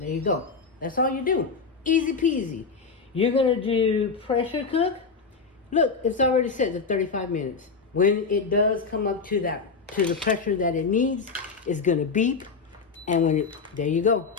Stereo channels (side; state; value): right; quieter; 4.9 dB